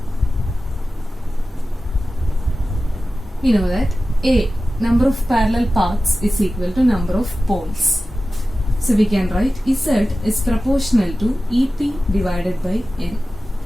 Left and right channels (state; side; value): normal; both; correlation 0.95